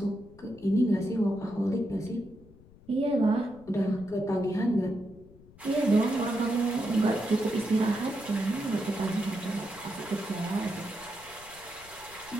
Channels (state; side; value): noise; left; rumble, 23 dB below the sound